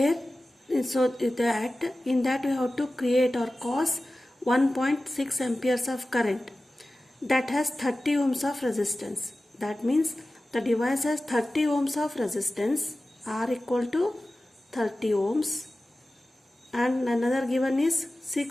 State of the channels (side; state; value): both; normal; correlation 0.96